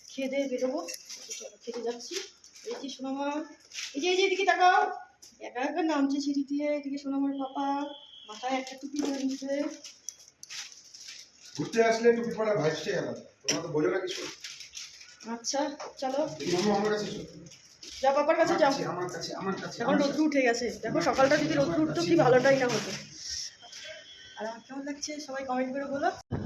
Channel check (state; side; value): identical; both; correlation 1.00